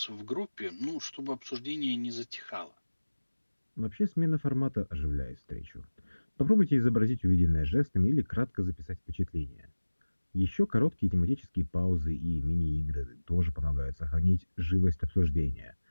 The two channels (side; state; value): both; inverted; correlation -1.00